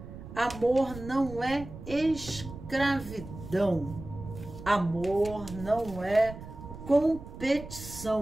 amor não é escravidão, amor não é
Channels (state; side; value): noise; right; rumble, 13 dB below the sound